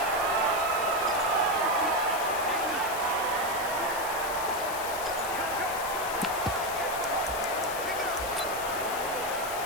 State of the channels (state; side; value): noise; left; hiss, 9 dB below the sound